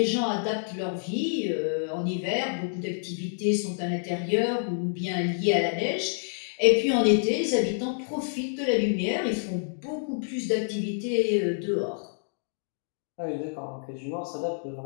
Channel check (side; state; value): right; silent; digital silence